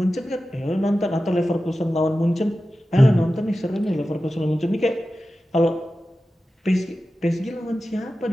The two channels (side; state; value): both; normal; correlation 0.94